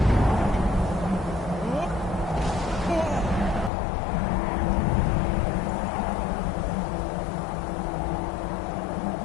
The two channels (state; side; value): drops out; right; at 3.7 s